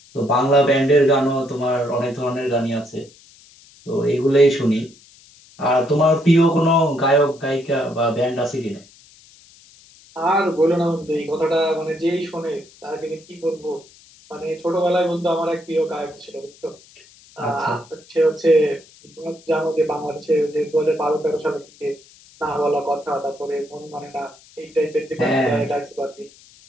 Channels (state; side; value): noise; left; hiss, 25 dB below the sound